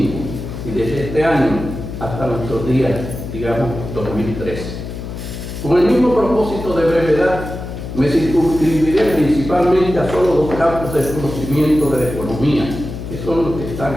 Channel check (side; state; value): left; noise; hum, 8 dB below the sound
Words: y desde este año hasta nuestros días, digamos 2013. Con el mismo propósito de brevedad, me circunscribiré principalmente a solo 2 campos de conocimiento de la economía, que son los que están